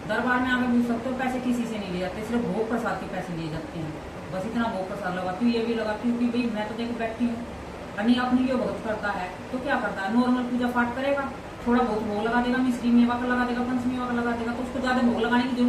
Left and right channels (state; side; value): identical; both; correlation 1.00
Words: दरबार में आकर पूछ सकते हो, पैसे किसी से नहीं ले जाते, सिर्फ भोग प्रसाद के पैसे लिए जाते हैं। बस इतना भोग प्रसाद लगाती हूँ, ये भी लगाती हूँ कि भाई मैं तो देखो बैठती हूँ, नहीं अपनी लिए भगत करता है तो क्या करता है, नॉर्मल पूजा पाठ करेगा, थोड़ा बहुत भोग लगा देगा, मिश्री मेवा का लगा देगा, पंचमेवा का लगा देगा, तो उसको ज्यादा भोग लगाने की